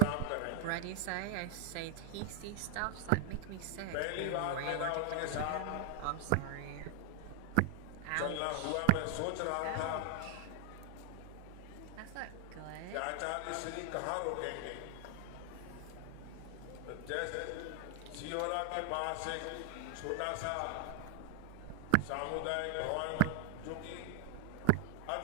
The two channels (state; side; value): different; both; correlation 0.00